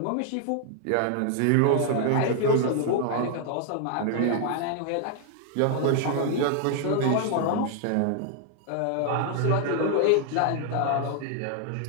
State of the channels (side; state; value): both; different; correlation 0.00